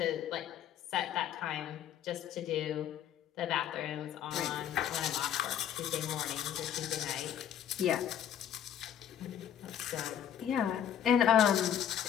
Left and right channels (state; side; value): quieter; right; 9.7 dB